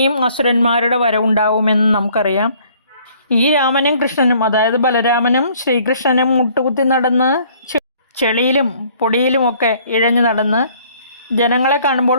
അസുരന്മാരുടെ വരവുണ്ടാവുമെന്ന് നമുക്കറിയാം. ഈ രാമനും കൃഷ്ണനും, അതായത് ബലരാമനും ശ്രീകൃഷ്ണനും മുട്ടുകുത്തി നടന്ന് ചെളിയിലും പൊടിയിലുമൊക്കെ ഇഴഞ്ഞു നടന്ന് ജനങ്ങളെ കാണുമ്പോൾ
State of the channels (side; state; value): both; inverted; correlation -0.59